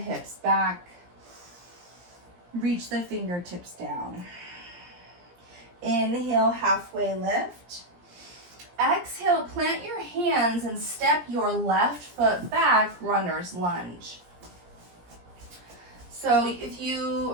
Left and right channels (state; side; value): late; left; 17 ms